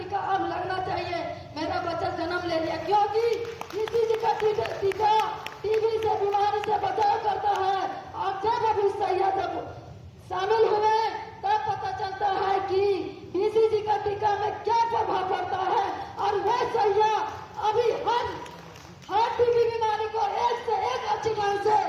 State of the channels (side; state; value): both; identical; correlation 1.00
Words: अब लगना चाहिए, मेरा बच्चा जन्म ले लिया, क्योंकि बीसीजी का टीका टीबी से बीमारी से बचाव करता है। और जब अभी सैया जब शामिल हुए तब पता चलता है कि बीसीजी का टीका में क्या प्रभाव पड़ता है। और वह सैया अभी हर टीबी बीमारी को एक से एक अच्छी ढंग से